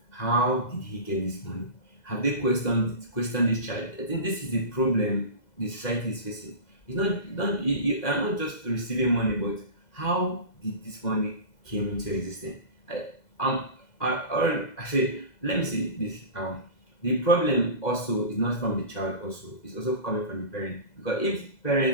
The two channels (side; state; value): right; late; 2.0 ms